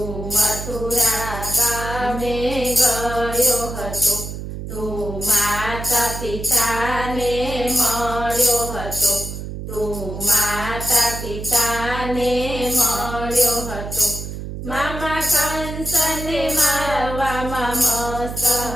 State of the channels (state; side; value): noise; right; hum, 8 dB below the sound